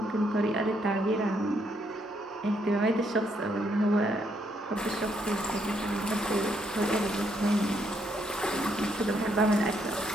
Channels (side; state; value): both; normal; correlation 0.74